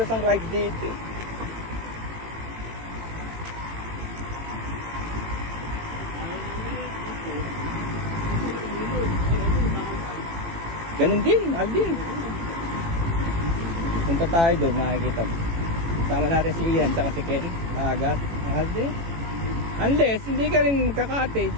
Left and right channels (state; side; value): late; left; 18 ms